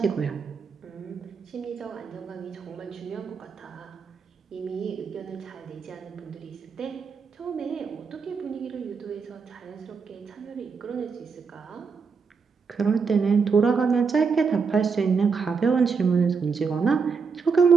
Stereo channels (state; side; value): quieter; left; 5.4 dB